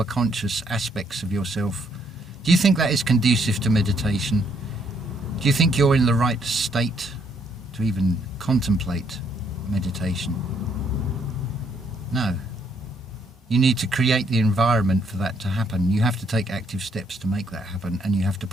conscious aspects of yourself, do you think that is conducive to meditation? Do you think you're in the right state to even contemplate meditation? No. You need to create the environment for that to happen. You have to take active steps to make that happen, and you have to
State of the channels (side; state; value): both; normal; correlation 0.70